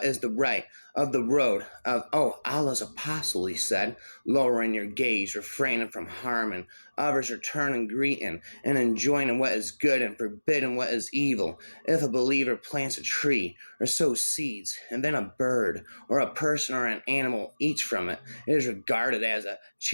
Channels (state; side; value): inverted; both; correlation -1.00